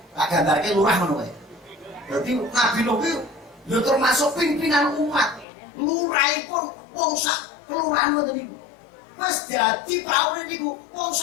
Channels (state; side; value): drops out; right; at 5.5 s